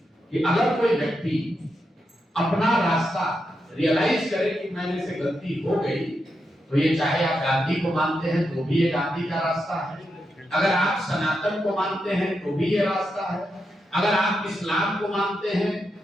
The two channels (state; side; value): normal; both; correlation 0.85